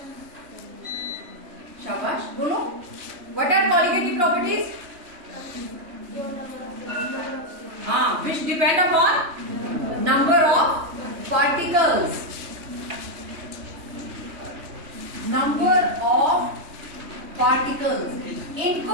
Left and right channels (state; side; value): late; left; 3.1 ms